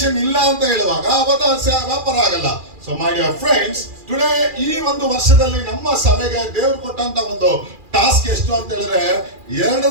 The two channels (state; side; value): late; left; 2.4 ms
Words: ಇಲ್ಲ ಅಂತ ಹೇಳುವಾಗ ಅವತ್ತು ವ್ಯಾಪಾರ ಆಗಲ್ಲ. So my dear friends, today ಈ ಒಂದು ವರ್ಷದಲ್ಲಿ ನಮ್ಮ ಸಭೆಗೆ ದೇವರು ಕೊಟ್ಟಂತ ಒಂದು ಟಾಸ್ಕ್ ಎಷ್ಟು ಅಂತ ಹೇಳಿದ್ರೆ